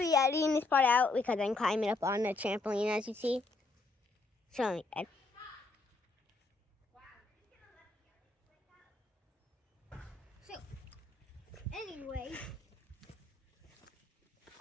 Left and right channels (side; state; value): right; quieter; 3.4 dB